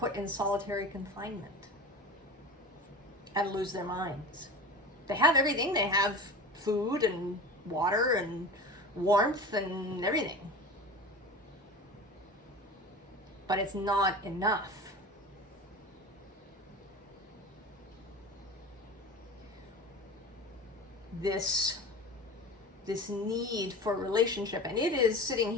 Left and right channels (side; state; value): both; normal; correlation 0.33